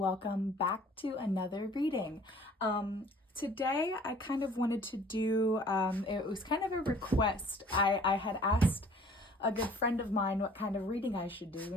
back to another reading. Today, I kind of wanted to do, it was kind of a request. I had asked a good friend of mine what kind of reading I should do,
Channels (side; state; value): both; normal; correlation 0.53